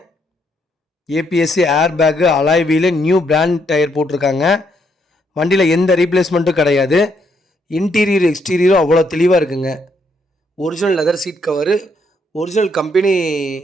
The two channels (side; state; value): both; normal; correlation 0.74